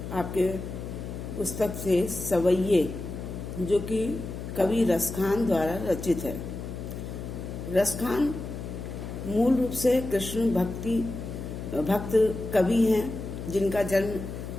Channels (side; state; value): left; noise; hum, 8 dB below the sound